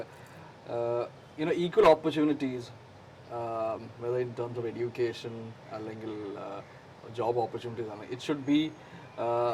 equal opportunities whether in terms of education അല്ലെങ്കിൽ ജോബ് ഓപ്പർച്യൂണിറ്റീസ് ആണ്. It should be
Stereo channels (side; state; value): both; identical; correlation 1.00